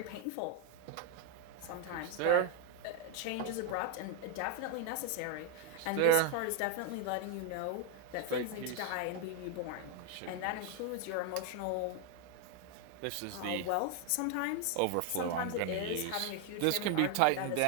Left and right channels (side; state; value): both; different; correlation 0.01